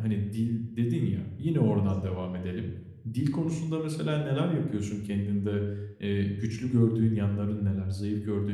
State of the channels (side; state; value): both; identical; correlation 1.00